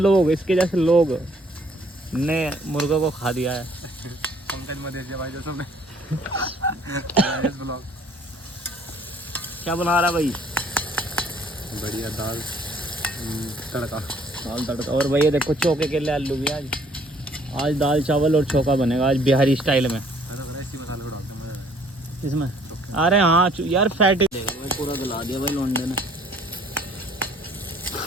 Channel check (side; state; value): both; normal; correlation 0.60